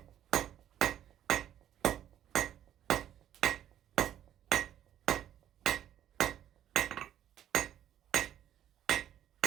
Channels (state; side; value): quieter; left; 11.0 dB